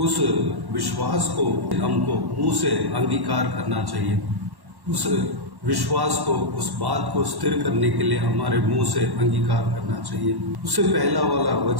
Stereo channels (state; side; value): late; left; 1.1 ms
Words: विश्वास को हमको मुंह से अंगीकार करना चाहिए। उस विश्वास को, उस बात को स्थिर करने के लिए हमारे मुंह से अंगीकार करना चाहिए। उससे पहला वाला